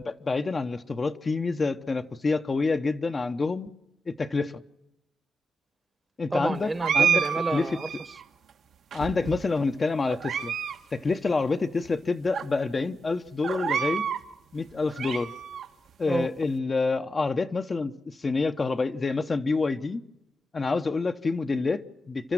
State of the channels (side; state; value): both; normal; correlation 0.88